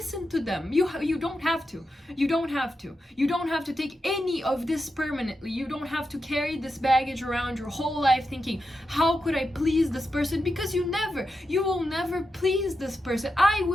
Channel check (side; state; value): both; normal; correlation 0.88